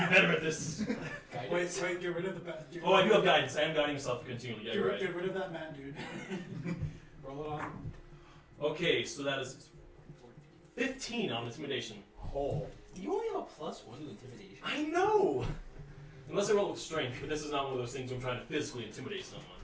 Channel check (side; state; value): both; identical; correlation 1.00